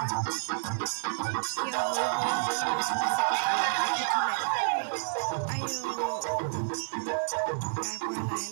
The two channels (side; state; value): left; silent; digital silence